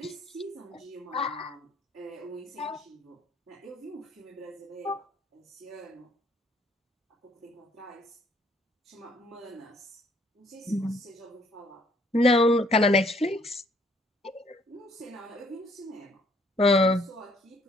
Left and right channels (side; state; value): both; normal; correlation 0.64